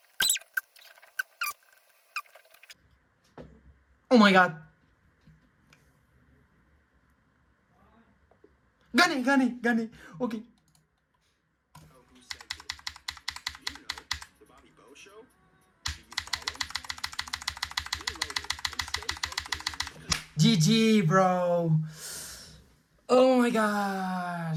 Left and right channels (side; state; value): both; identical; correlation 1.00